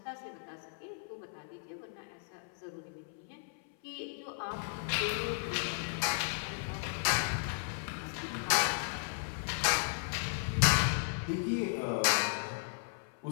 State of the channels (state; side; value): silent; right; 54 dB below the other